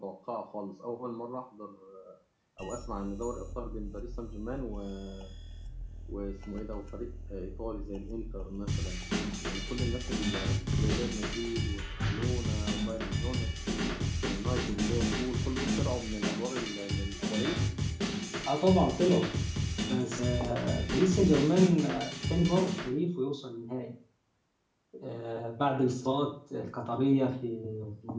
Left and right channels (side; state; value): both; identical; correlation 1.00